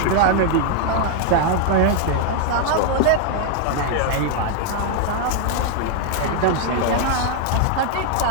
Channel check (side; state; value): both; different; correlation 0.00